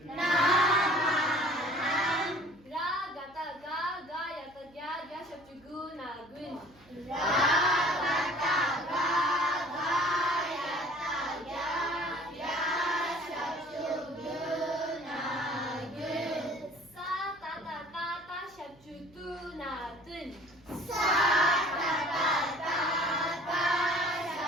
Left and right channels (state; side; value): noise; right; hum, 28 dB below the sound